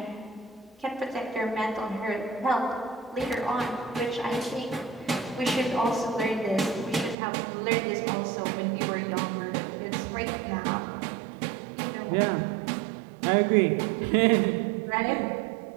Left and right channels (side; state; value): left; drops out; at 7.2 s